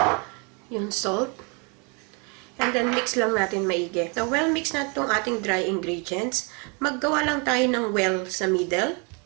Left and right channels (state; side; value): quieter; left; 33.5 dB